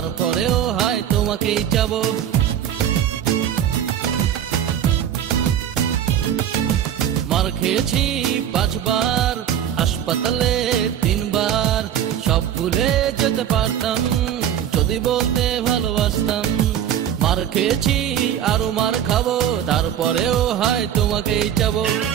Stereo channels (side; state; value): left; quieter; 9.9 dB